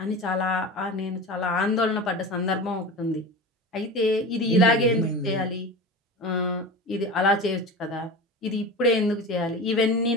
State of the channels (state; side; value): normal; both; correlation 0.30